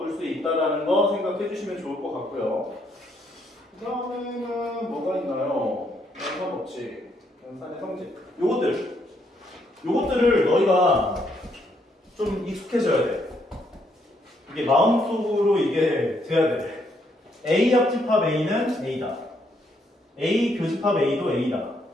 수 있다는 거 생각해 주시면 좋을 것 같고요. 그 다음에는 뭐가 있나요? 연산법칙, 연산의 성질. 요것들을 너희가 좀 익숙해져야 돼. 이게 마음속으로 이게 돼야 돼. A 합집합 A는 A다. A 교집합 A도 A다.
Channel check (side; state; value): both; normal; correlation 0.73